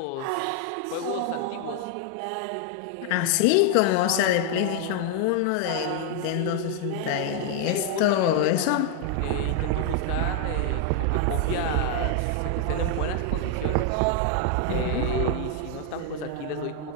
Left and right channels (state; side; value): different; both; correlation 0.00